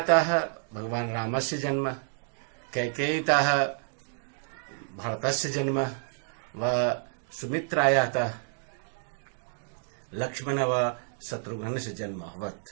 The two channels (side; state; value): left; silent; digital silence